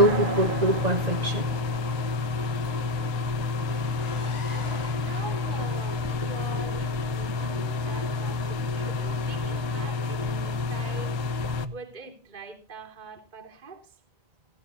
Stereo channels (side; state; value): left; late; 1.3 ms